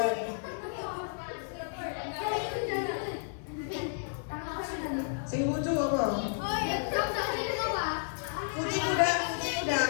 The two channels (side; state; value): right; silent; 56 dB below the other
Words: Sing lucu apa? Kucing udah, kucing udah.